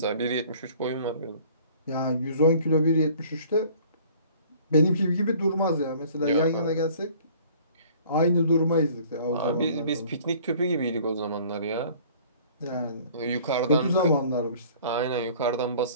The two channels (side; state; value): both; inverted; correlation -0.52